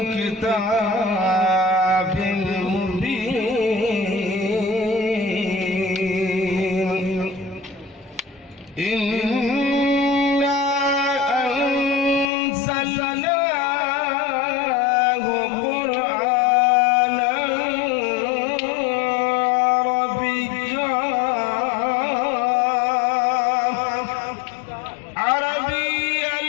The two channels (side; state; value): right; drops out; at 12.3 s